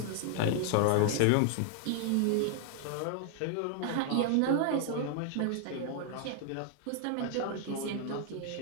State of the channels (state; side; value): different; both; correlation 0.00